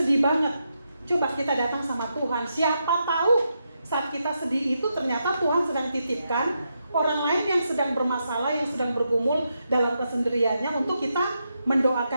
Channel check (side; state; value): both; inverted; correlation -0.84